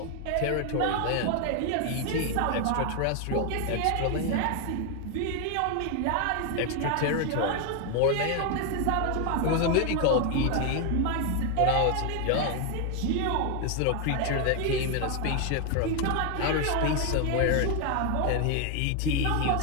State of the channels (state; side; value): different; both; correlation 0.01